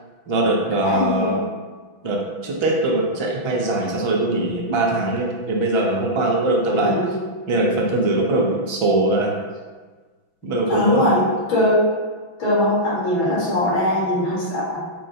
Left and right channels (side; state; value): right; late; 6.1 ms